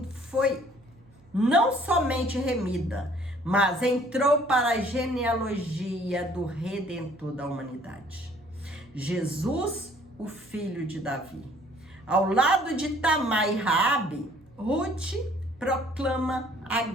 não somente remida, mas entrou para a genealogia do Redentor da humanidade. Jesus, o filho de Davi. Ao lado de Tamar e Raabe, Ruth proclama a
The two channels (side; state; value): right; noise; hum, 28 dB below the sound